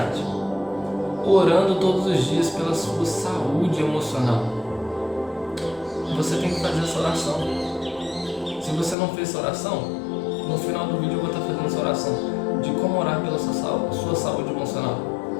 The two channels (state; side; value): drops out; right; at 9.0 s